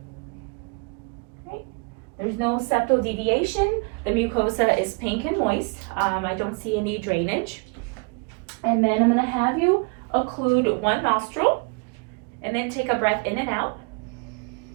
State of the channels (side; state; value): left; quieter; 32.7 dB